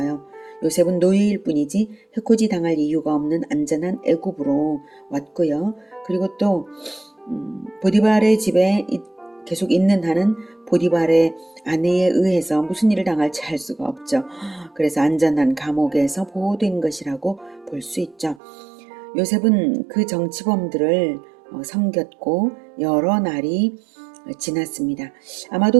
요셉은 노예일 뿐이지 해코지 당할 이유가 없는 안전한 애굽으로 왔고요. 그리고 또 보디발의 집에 계속 있는 한은 보디발의 아내에 의해서 무슨 일을 당할지 알 수가 없죠. 그래서 안전한 감옥에서 보호된 것이라고 볼 수 있죠. 요셉은 그 정치범들을 섬겼고 여러 날이 지났습니다.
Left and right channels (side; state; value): left; drops out; at 18.4 s